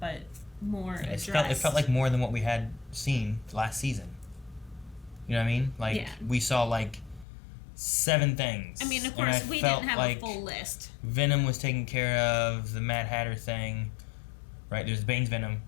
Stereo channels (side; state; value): right; drops out; at 7.2 s